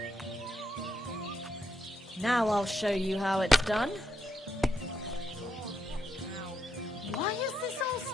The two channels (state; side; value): normal; both; correlation 0.79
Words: Now I'll show you how it's done. Why is this all